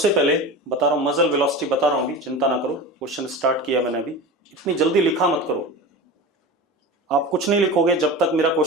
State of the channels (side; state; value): both; normal; correlation 0.30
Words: पहले बता रहा हूं, मजल वेलोसिटी बता रहा हूं अभी, चिंता ना करो, क्वेश्चन स्टार्ट किया मैंने अभी। इतनी जल्दी लिखा मत करो, आप कुछ नहीं लिखोगे जब तक मेरा